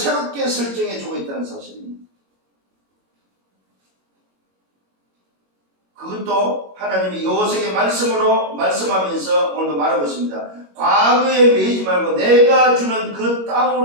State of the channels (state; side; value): late; left; 21 ms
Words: 설정해 주고 있다는 사실입니다. 그것도 하나님이 여호수아에게 말씀으로 말씀하면서 오늘도 말하고 있습니다. 과거에 매이지 말고 내가 주는 그